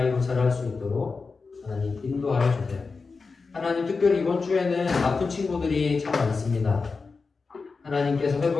자랄 수 있도록 하나님 인도하여 주세요. 하나님, 특별히 이번 주에는 아픈 친구들이 참 많습니다. 하나님께서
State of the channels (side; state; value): right; quieter; 4.5 dB